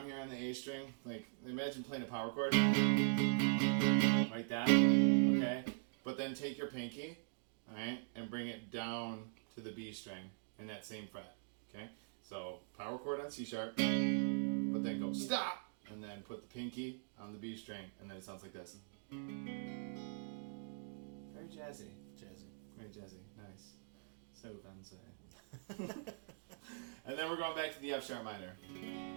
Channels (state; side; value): silent; left; digital silence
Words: here on the A string. Like, imagine playing a power chord. Like that. Okay? But then take your pinky, alright, and bring it down to the B string in that same fret. Okay? So, power chord on C sharp, but then go stop, and then put the pinky on the B string, and then it sounds like this. Very jazzy. Jazzy. Very jazzy. Nice. So fancy. And then we're going back to the F sharp minor.